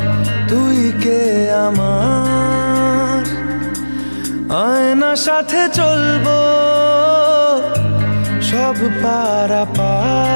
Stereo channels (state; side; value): inverted; both; correlation -1.00